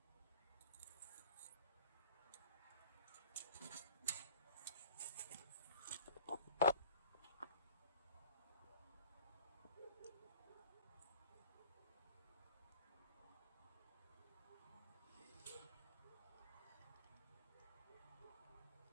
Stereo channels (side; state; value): both; inverted; correlation -0.45